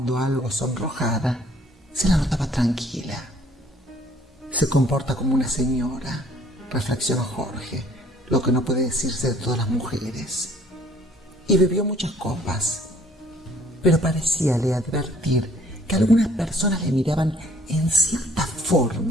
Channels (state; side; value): normal; both; correlation 0.58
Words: algo sonrojada, se la notaba tranquila. Se comporta como una señora, reflexionó Jorge, lo que no puede decirse de todas las mujeres. Y bebió muchas copas, pero parecíale advertir que algunas personas le miraban en cierta